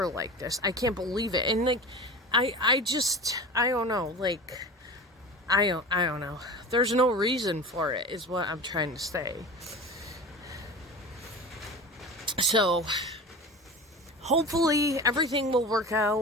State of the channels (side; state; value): both; normal; correlation 0.33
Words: like this. I can't believe it. And like, I don't know. Like, I don't know. There's no reason for it, is what I'm trying to say. So, hopefully everything will work